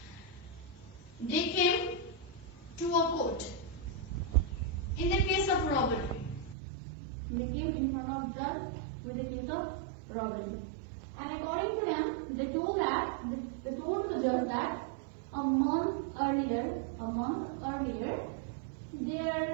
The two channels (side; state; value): left; drops out; at 6.6 s